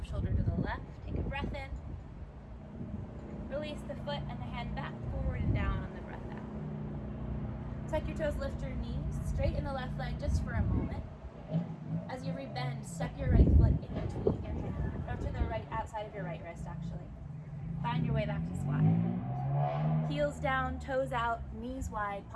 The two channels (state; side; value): identical; both; correlation 1.00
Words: shoulder to the left. Take a breath in. Release the foot and the hand back, forward and down on the breath out. Tuck your toes, lift your knees, straighten the left leg just for a moment. As you rebend, step your right foot in between your hands, or to the right, outside of your right wrist actually. Find your way back to squat. Heels down, toes out, knees wide,